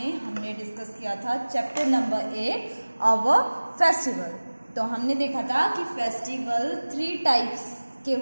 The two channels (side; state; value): both; inverted; correlation -1.00